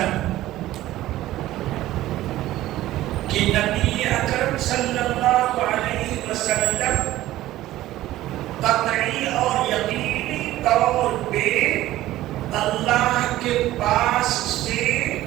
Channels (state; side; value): quieter; left; 15.2 dB